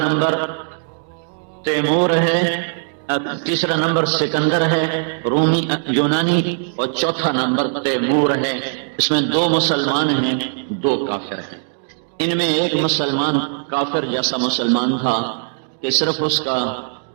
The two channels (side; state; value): left; silent; digital silence